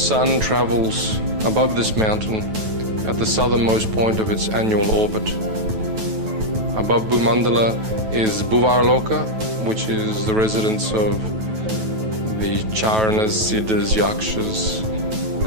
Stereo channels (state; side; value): late; left; 9.2 ms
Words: travels above this mountain at the southernmost point of its annual orbit. Above Bhumandala is Bhuvarloka, which is the residence of the Charanas, Siddhas, Yakshas,